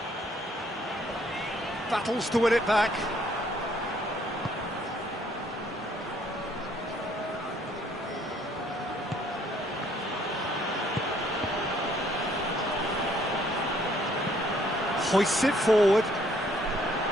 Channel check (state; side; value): normal; both; correlation 0.64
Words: Battles to win it back. Hoists it forward.